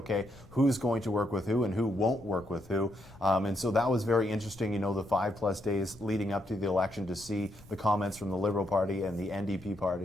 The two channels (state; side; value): noise; left; rumble, 23 dB below the sound